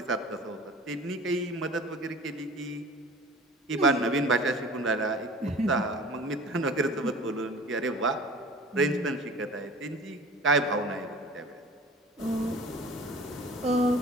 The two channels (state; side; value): normal; both; correlation 0.41